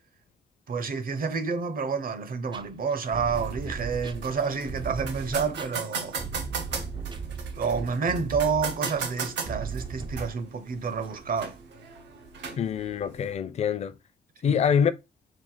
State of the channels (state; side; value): normal; both; correlation 0.31